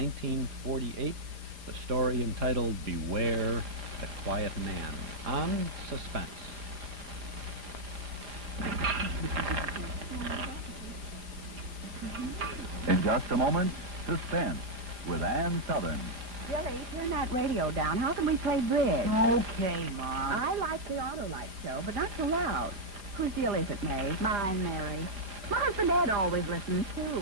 the story entitled Beware the Quiet Man, on Suspense. In just a moment, Suspense with Ann Sothern. Billy, turn that radio down. How can we play bridge? Okay, Mom. I like the Auto-Lite show, but not so loud. Whose deal is it, May? Mine, Mary. My husband Ed always listens, too.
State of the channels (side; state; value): left; late; 4.9 ms